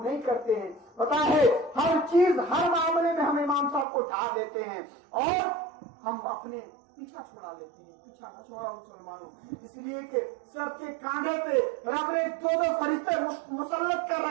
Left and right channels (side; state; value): left; drops out; at 3.9 s